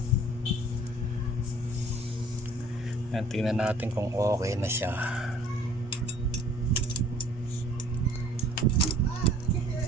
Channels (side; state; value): both; normal; correlation 0.54